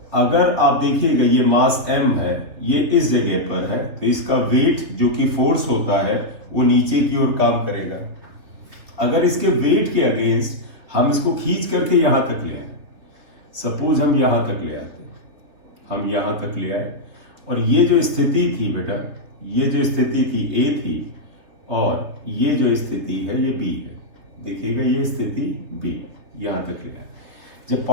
अगर आप देखिएगा ये मास m है, ये इस जगह पर है, तो इसका वेट जो कि फोर्स होता है वो नीचे की ओर काम करेगा। अगर इसके वेट के अगेंस्ट हम इसको खींच करके यहां तक ले आए, सपोज हम यहां तक ले आते, हम यहां तक ले आए, और ये जो स्थिति थी बेटा, ये जो स्थिति थी A थी, और ये जो स्थिति है ये B है। देखिएगा ये स्थिति B, यहां तक ले आए। जब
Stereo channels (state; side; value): late; left; 3.3 ms